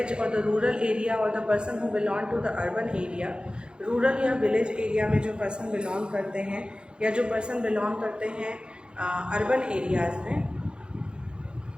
or the rural area or the person who belong to the urban area, rural या village area में जो person belong करते हैं या जो person belong करते हैं urban areas में,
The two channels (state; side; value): late; left; 0.050 ms